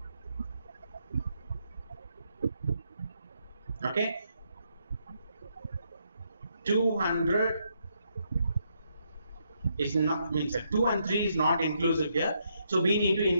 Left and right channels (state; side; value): inverted; both; correlation -0.77